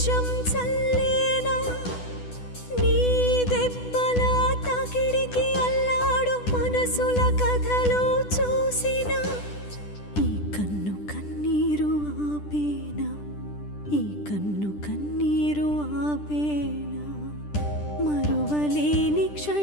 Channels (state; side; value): late; right; 10 ms